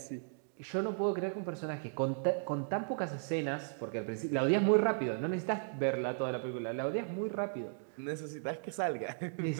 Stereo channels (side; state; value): left; silent; digital silence